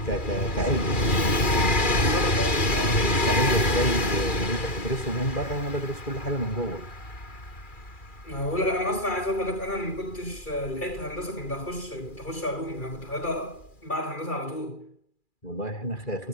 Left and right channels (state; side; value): late; right; 2.4 ms